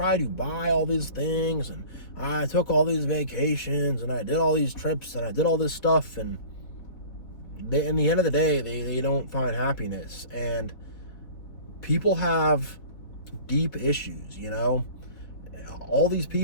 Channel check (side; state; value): right; late; 3.9 ms